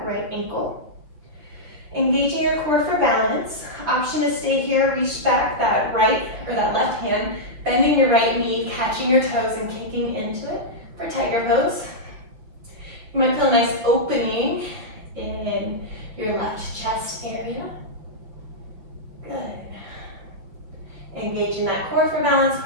right ankle. Engaging your core for balance. Option to stay here, reach back that right or that left hand, bending your right knee, catching your toes and kicking into it for tiger pose. You might feel a nice opening in your left chest area. Good. Engaging that core for balance,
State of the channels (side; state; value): left; late; 5.9 ms